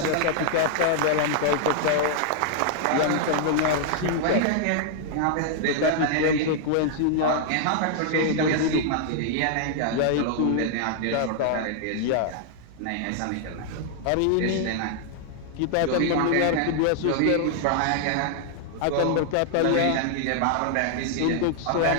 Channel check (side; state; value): both; different; correlation 0.00